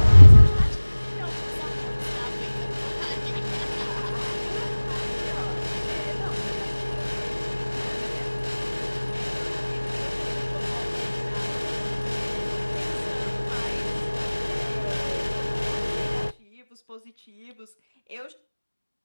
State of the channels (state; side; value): inverted; both; correlation -1.00